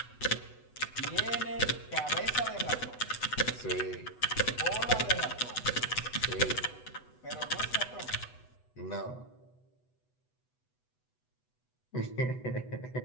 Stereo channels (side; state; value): right; late; 8.1 ms